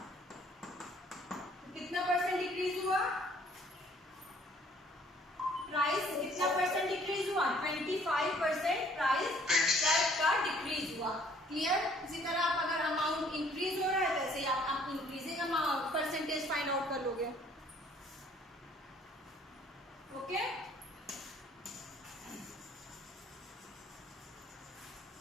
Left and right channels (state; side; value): normal; both; correlation 0.59